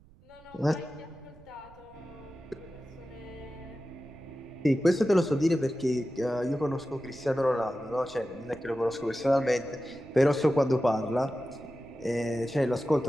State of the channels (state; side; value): noise; right; rumble, 24 dB below the sound